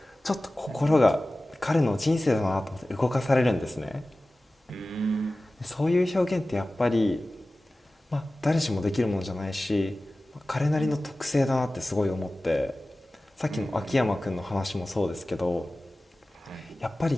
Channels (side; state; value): both; normal; correlation 0.96